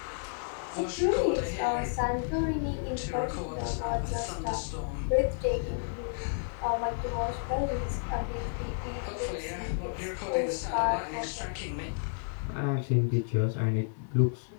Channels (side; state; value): right; silent; digital silence